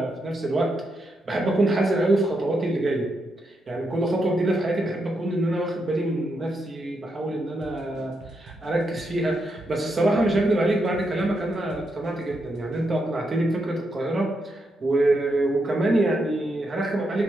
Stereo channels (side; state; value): both; normal; correlation 0.82